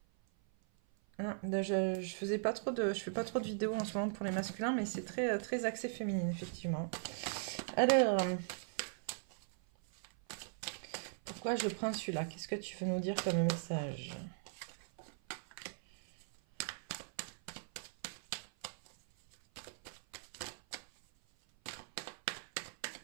Hein, je fais pas trop de vidéos en ce moment pour les masculins, mais c'est très axé féminine, effectivement. Alors, pourquoi je prends celui-là? Qu'est-ce que tu veux nous dire comme message?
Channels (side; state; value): left; silent; 52 dB below the other